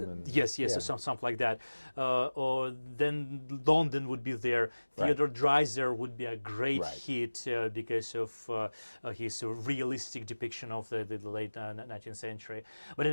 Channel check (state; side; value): inverted; both; correlation -1.00